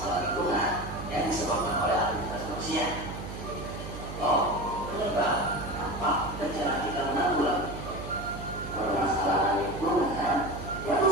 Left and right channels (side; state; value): right; noise; hum, 9 dB below the sound